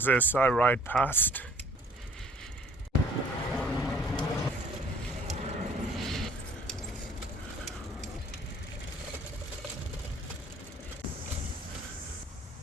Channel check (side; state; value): both; normal; correlation 0.55